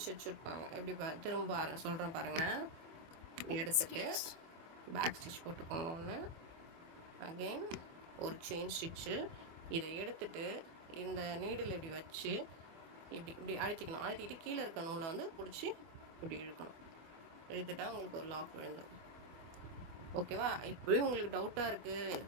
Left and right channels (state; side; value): late; left; 24 ms